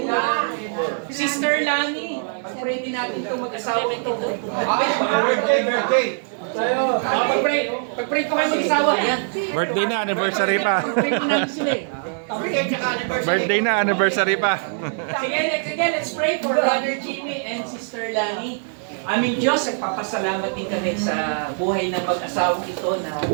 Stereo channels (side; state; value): left; silent; digital silence